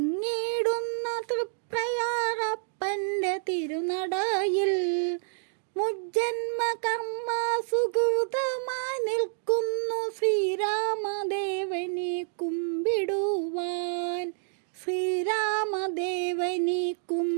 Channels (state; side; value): silent; left; digital silence